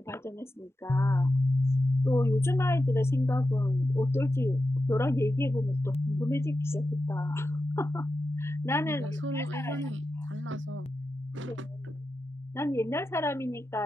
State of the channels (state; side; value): normal; both; correlation 0.90